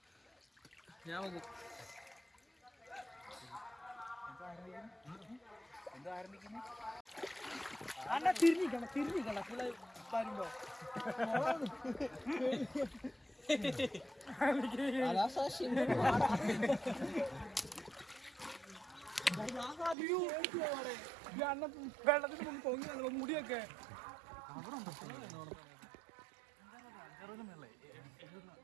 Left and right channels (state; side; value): drops out; left; at 20.0 s